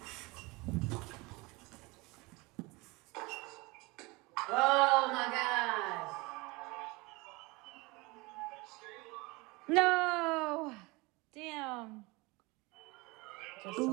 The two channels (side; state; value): left; quieter; 24.6 dB